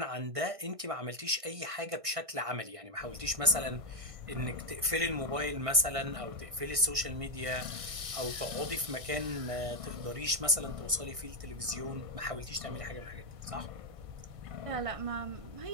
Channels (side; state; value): left; late; 1.6 ms